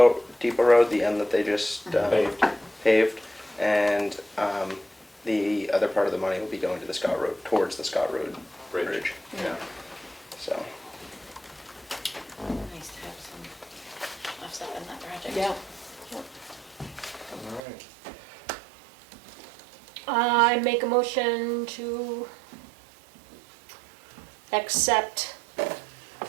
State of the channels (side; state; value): left; drops out; at 17.6 s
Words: road, the end that they just paved, and the other part of the money will be going to the Scott Road, towards the Scott Road Bridge. Yeah. So nice to have some offset in that project. Yeah. All right. I make a motion to accept,